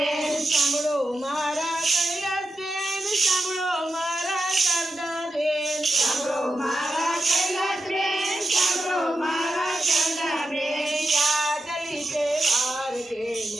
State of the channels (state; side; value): normal; both; correlation 0.88